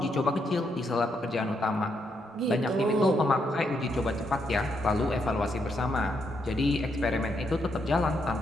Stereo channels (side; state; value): both; normal; correlation 0.78